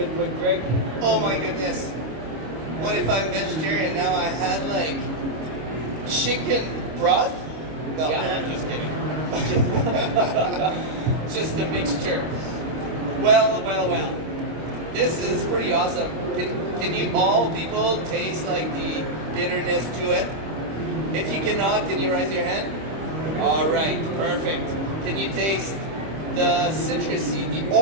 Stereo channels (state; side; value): late; left; 25 ms